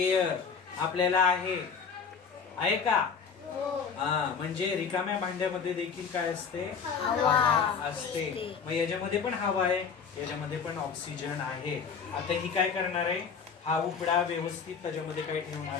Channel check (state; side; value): quieter; right; 6.2 dB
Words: आपल्याला आहे का? म्हणजे रिकाम्या भांड्यामध्ये देखील काय असते? हवा असते। मग याच्यामध्ये पण हवा आहे, याच्यामध्ये पण ऑक्सिजन आहे। आता ही काय करणार आहे, हा उपडा व्यवस्थित त्याच्यामध्ये काय